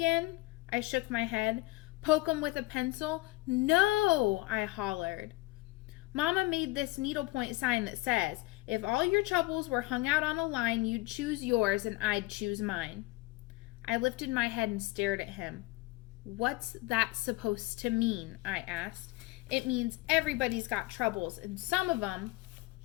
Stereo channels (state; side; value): quieter; right; 21.7 dB